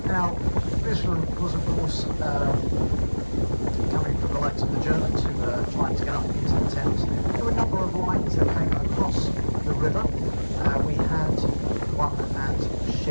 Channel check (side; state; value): both; inverted; correlation -1.00